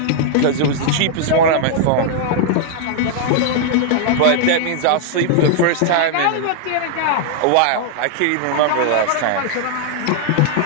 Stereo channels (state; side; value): different; both; correlation 0.00